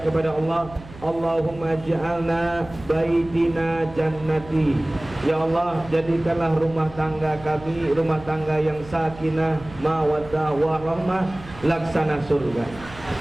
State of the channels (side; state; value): right; noise; hum, 18 dB below the sound